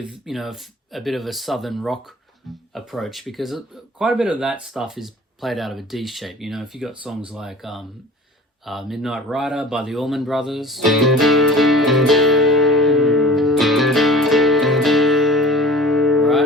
a bit of a southern rock approach, because quite a bit of that stuff is played out of a D shape. You know, if you got songs like Midnight Rider by the Allman Brothers,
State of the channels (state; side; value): normal; both; correlation 0.42